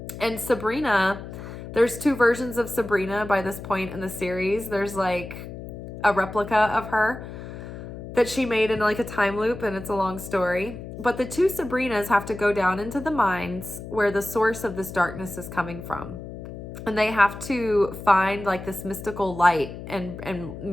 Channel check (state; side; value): noise; left; hum, 11 dB below the sound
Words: And Sabrina, there's 2 versions of Sabrina by this point in the series. There's like a replica of her that she made in like a time loop, and it's a long story. But the 2 Sabrinas have to go down into the mines where the source of this darkness is coming from. And they have to find like this mystical light and